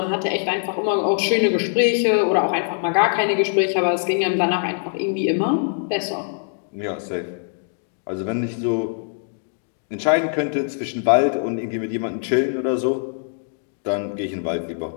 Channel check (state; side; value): silent; right; digital silence